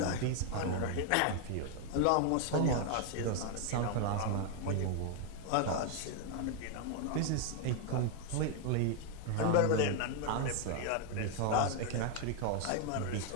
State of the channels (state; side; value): different; both; correlation 0.00